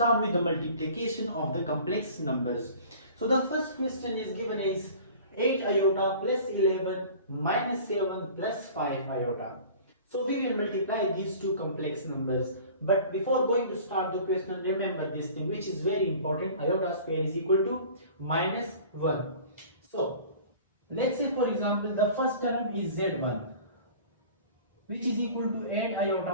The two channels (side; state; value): both; inverted; correlation -0.44